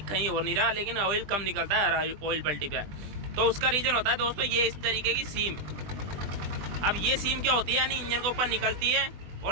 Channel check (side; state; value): left; late; 20 ms